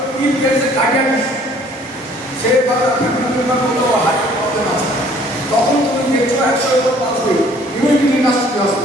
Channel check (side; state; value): both; normal; correlation 0.57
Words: ইন কেসে কার্ডিয়াক সে ফ্যামিলি মেম্বার বললো হার্টের প্রবলেম আছে, তখন তুমি দেখছো 100 এর উপর পাস হয়ে ইমিডিয়েটলি নাস্তি